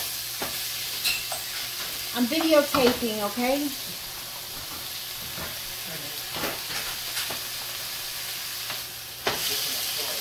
I'm videotaping, okay?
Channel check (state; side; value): identical; both; correlation 1.00